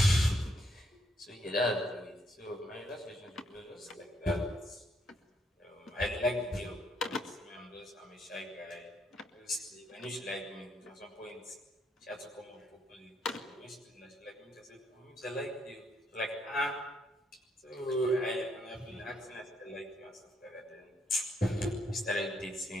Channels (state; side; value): normal; both; correlation 0.74